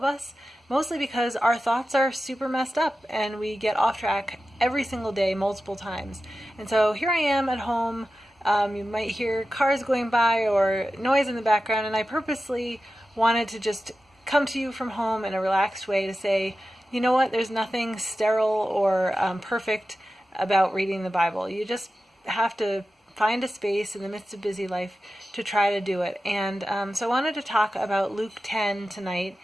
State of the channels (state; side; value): normal; both; correlation 0.93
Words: us, mostly because our thoughts are super messed up and we get off track every single day multiple times. And so here I am at home. You might hear cars going by or noise in the background, and I purposely wanted to just come to you from home in a relaxed way to say, you know what, there's nothing sterile or perfect about reading the Bible. You just have to find a space in the midst of busy life to try to do it. And so I wanted to talk about Luke 10 tonight